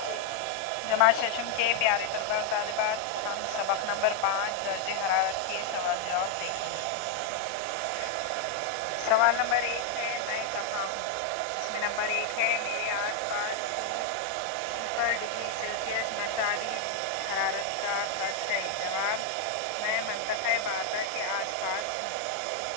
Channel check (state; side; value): different; both; correlation 0.00